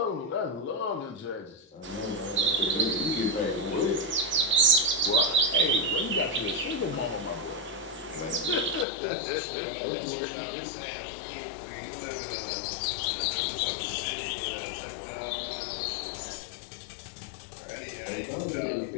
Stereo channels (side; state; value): right; drops out; at 8.8 s